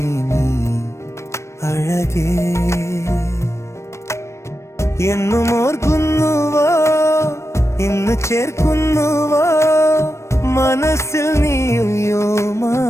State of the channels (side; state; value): right; late; 0.13 ms